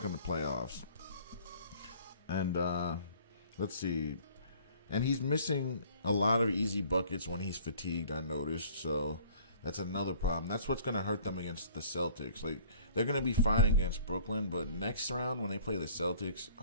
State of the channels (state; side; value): inverted; both; correlation -0.52